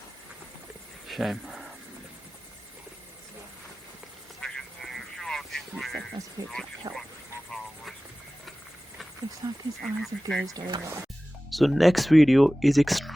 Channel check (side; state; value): both; normal; correlation 0.97